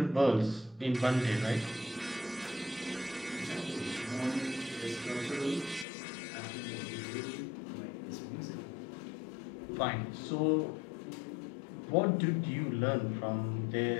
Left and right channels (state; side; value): drops out; right; at 5.9 s